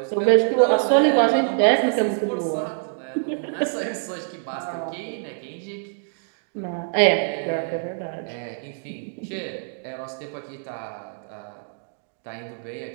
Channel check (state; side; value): silent; left; digital silence